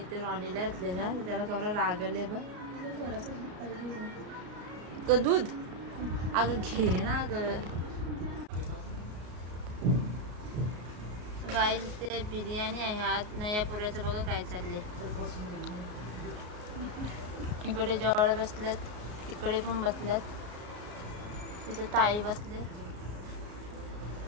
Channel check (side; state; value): left; late; 33 ms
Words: रॉनीला घातले ना, त्याला कमरा रागले बा. दूध अगं घे ना अगं. गाईज इथे बिर्याणी आहे आज ना. या पुऱ्याचं बघा काय चाललंय. इकडे जवळ बसल्यात, तिकडे पण बसल्यात, तिथे ताई बसले.